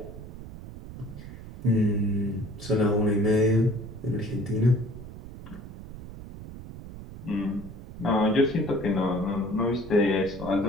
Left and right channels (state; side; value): noise; right; rumble, 13 dB below the sound